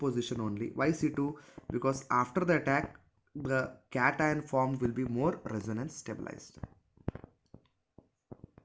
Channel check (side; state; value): both; identical; correlation 1.00